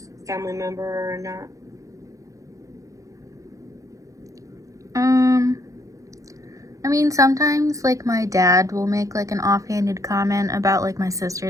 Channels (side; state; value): left; late; 0.16 ms